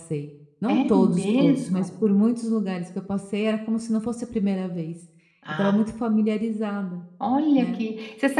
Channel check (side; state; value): both; identical; correlation 1.00